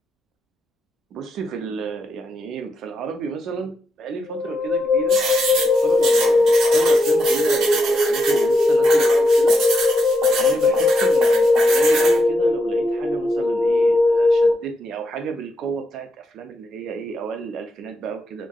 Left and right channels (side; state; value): both; normal; correlation 0.82